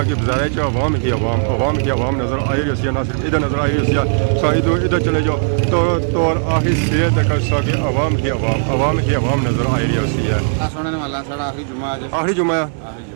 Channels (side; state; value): left; silent; digital silence